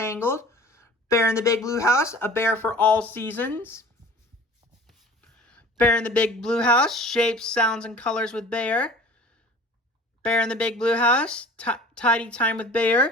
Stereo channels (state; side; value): normal; both; correlation 0.44